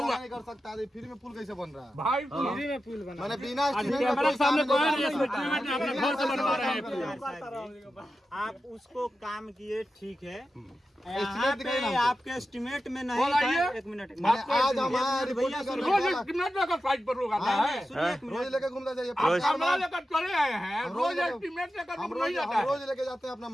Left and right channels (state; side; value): normal; both; correlation 0.91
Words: कर सकता। फ्री में पुल कैसे बन रहा है? भाई फ्री में पुल बना मैंने बिना एस्टिमेट कैमरा के सामने कोई नहीं एस्टिमेट ने अपने घर से बनवा रहे हैं आप उसको काम किए ठीक है। एस्टिमेट यहाँ दिखाइए पे ना। आपके एस्टिमेट में नहीं बोलाइए। था। एक मिनट मैंने आज हमारा रिपोर्ट रोज एस्टिमेट लेकर साइड पर लोग आता है। रोज लेके घूमता जाइए। आप कैमरा लेकर चले आए हैं। रोज एस्टिमेट लेकर हम नहीं जाता है। रोज लेके जाते हैं अपना